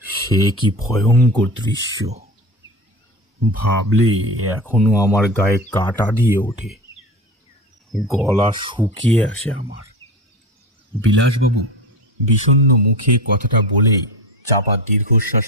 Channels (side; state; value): both; normal; correlation 0.28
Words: সে কি ভয়ঙ্কর দৃশ্য! ভাবলে এখনো আমার গায়ে কাঁটা দিয়ে ওঠে, গলা শুকিয়ে আসে আমার। বিলাসবাবু বিষণ্ণ মুখে কথাটা বলেই চাপা দীর্ঘশ্বাস